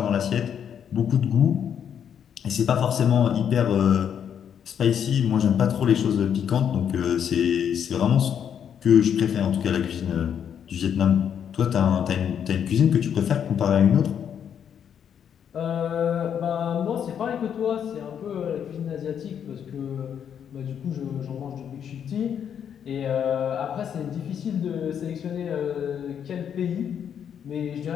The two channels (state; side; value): quieter; right; 8.4 dB